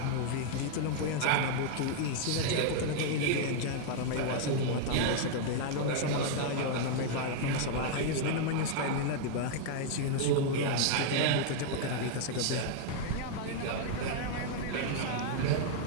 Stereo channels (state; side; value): different; both; correlation 0.00